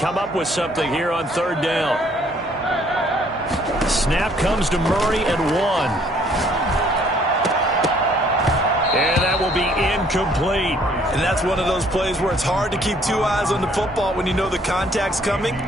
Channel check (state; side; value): normal; both; correlation 0.62